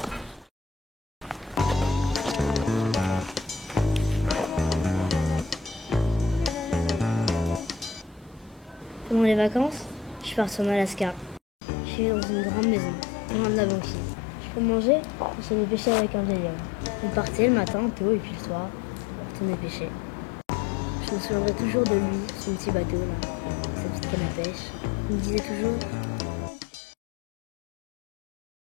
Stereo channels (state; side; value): drops out; right; at 11.4 s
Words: Pendant les vacances, je pars sur Alaska. Je suis dans une grande maison, loin de la banquise. Je peux manger, je vais pêcher avec un vieil homme. On partait le matin tôt et puis le soir, on retournait pêcher. Je me souviendrai toujours de lui, son petit bateau là, sa petite canne à pêche. Il me disait toujours.